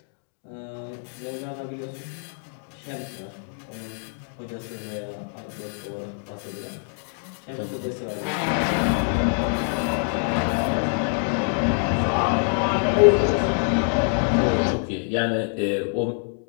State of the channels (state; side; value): silent; right; 58 dB below the other